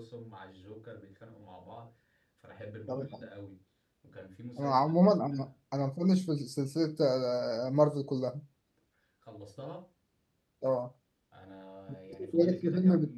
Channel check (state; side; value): identical; both; correlation 1.00